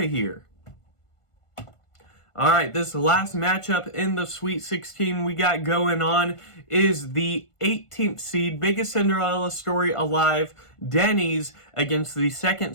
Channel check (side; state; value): right; late; 1.5 ms